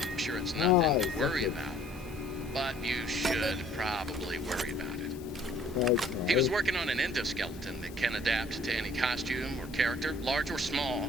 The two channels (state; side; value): normal; both; correlation 0.56